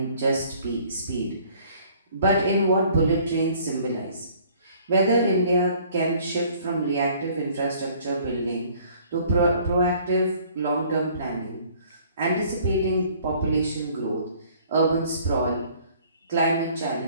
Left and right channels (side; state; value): both; inverted; correlation -0.56